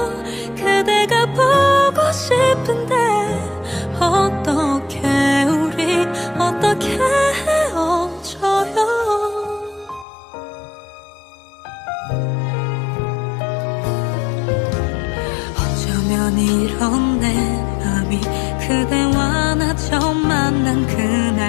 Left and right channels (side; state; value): right; drops out; at 10.1 s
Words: 그대가 보고 싶은데 어떻게 우리 어떻게 헤어져요. 어쩌면 이런 내 맘이 그대와 나 처음 만난